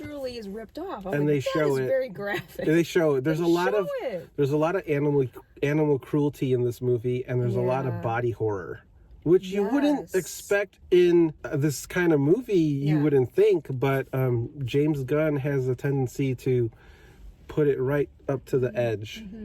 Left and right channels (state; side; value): identical; both; correlation 1.00